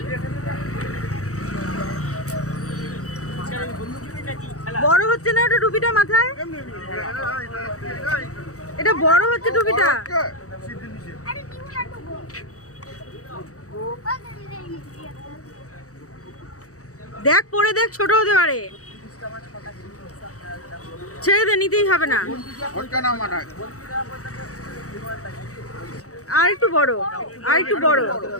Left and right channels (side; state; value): right; late; 0.65 ms